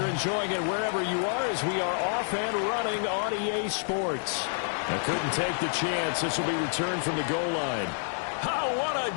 enjoying it wherever you are, as we are off and running on EA Sports. I couldn't take the chance. This will be returned from the goal line. Oh, what a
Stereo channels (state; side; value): silent; right; digital silence